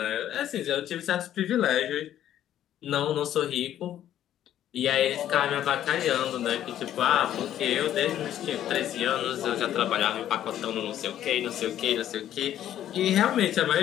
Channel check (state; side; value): quieter; right; 11.5 dB